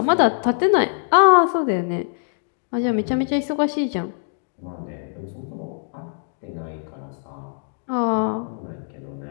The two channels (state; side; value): silent; right; digital silence